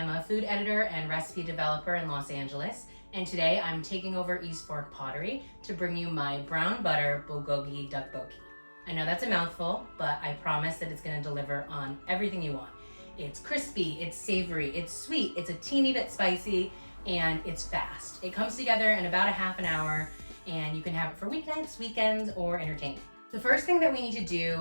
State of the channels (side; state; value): both; inverted; correlation -1.00